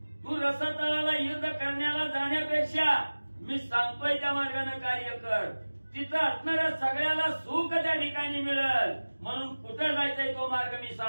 तू रसातळाला युद्ध करण्याला जाण्यापेक्षा मी सांगतोय त्या मार्गाने कार्य कर. तिथं असणाऱ्या सगळ्याला सुख त्या ठिकाणी मिळेल. म्हणून कुठं जायचंय तो मार्ग मी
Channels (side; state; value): both; inverted; correlation -1.00